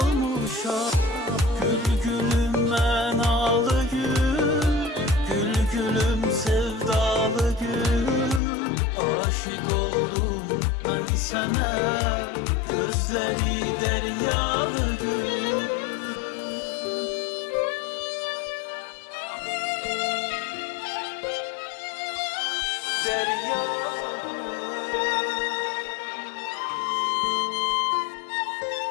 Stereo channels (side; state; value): right; drops out; at 8.4 s